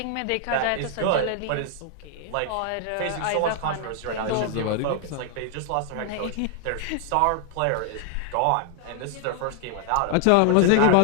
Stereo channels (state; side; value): different; both; correlation 0.00